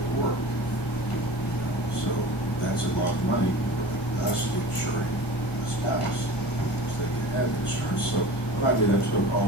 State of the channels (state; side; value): late; right; 1.5 ms